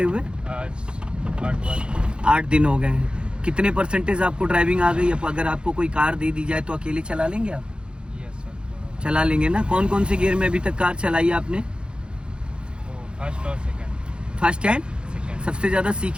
हुए? आज 8 दिन हो गए हैं। कितने परसेंटेज आपको ड्राइविंग आ गई? अब अगर आपको कोई कार दे दी जाए तो अकेले चला लेंगे आप? चला लेंगे ना। कौन कौन से गियर में अभी तक कार चलाई है आपने? फर्स्ट और सेकंड। फर्स्ट एंड सबसे ज्यादा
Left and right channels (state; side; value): late; left; 0.053 ms